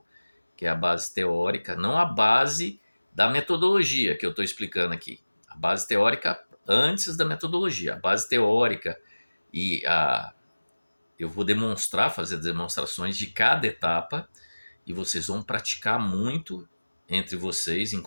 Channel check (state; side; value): inverted; both; correlation -1.00